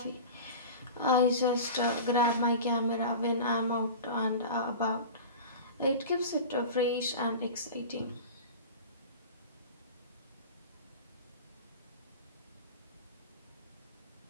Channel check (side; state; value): both; inverted; correlation -0.33